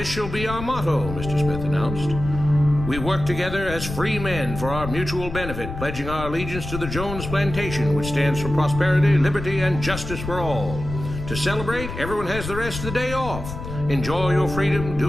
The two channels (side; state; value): left; noise; rumble, 8 dB below the sound